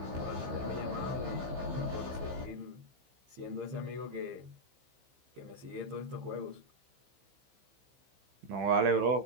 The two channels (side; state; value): left; late; 15 ms